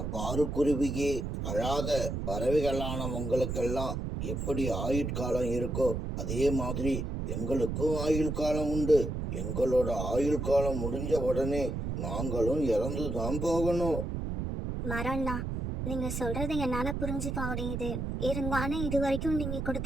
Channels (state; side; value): noise; right; rumble, 3 dB below the sound